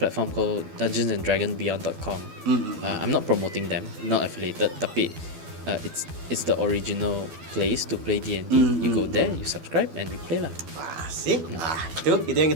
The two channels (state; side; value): late; left; 12 ms